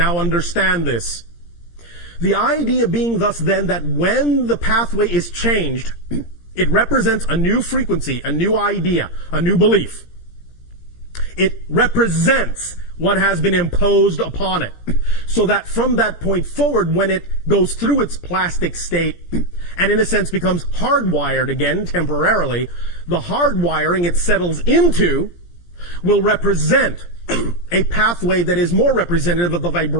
understand this. The idea being thus then that when the pathway is changed, it represents a new frequency, a new idea, a new belief. It represents what has been imposed upon it. So that from that point forward, when it goes through its plastic state and in a sense becomes hardwired again temporarily, the hardwiring it settles into will represent a pathway that is more representative of the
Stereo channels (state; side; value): late; right; 17 ms